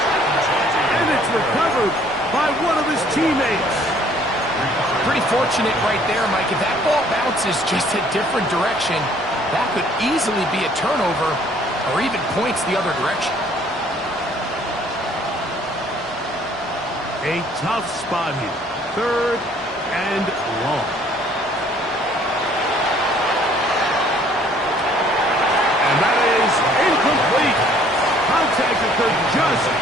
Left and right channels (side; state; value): both; normal; correlation 0.59